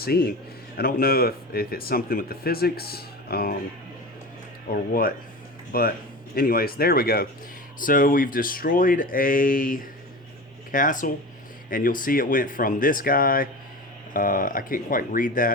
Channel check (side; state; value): both; normal; correlation 0.30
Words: I don't know if it's something with the physics or what, but anyways, there we go. So we've destroyed a castle, and you'll see it went from this guy, I can't quite read